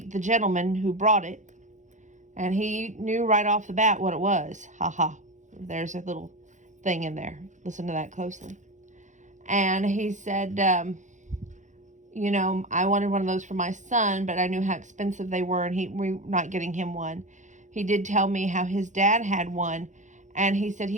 the gentleman who brought it, and he knew right off the bat what it was. Ha. There's a little thing in there. Listen to that closely. And he said, I wanted one of those for my son, but I knew how expensive they were, and we're not getting him one. He did tell me how his dad had one, and he said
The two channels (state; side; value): late; left; 0.35 ms